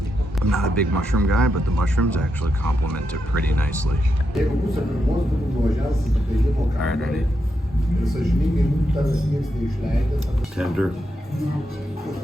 I'm not a big mushroom guy, but the mushrooms actually complement it pretty nicely. All right, ready? Tender.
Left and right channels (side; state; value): both; normal; correlation 0.84